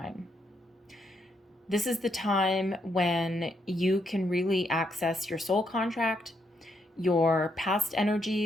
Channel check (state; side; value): normal; both; correlation 0.77